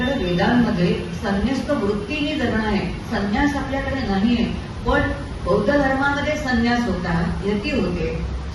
वेदांमध्ये संन्यास्त वृत्तीने जगणं आहे, संन्यास आपल्याकडे नाही आहे. पण बौद्ध धर्मामध्ये संन्यास होता, यती होते.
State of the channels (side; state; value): both; identical; correlation 1.00